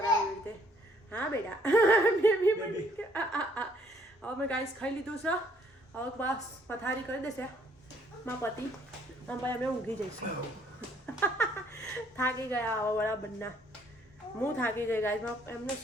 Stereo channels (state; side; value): normal; both; correlation 0.65